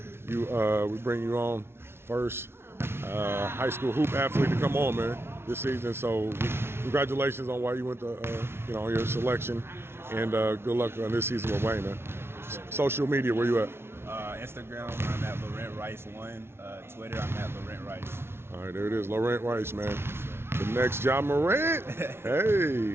We bring you on first high school hoop athlete to come on, man, this season. So congratulations on why you went to, on your selection. And good luck on this season with Wayne, man. Social media, where you at? Instagram, I'm at Lawrent Rice 1. Twitter, I'm at Lawrent Rice. All right, there it is, Lawrent Rice, man. The next Lawrent. Hey,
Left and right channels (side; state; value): left; late; 0.12 ms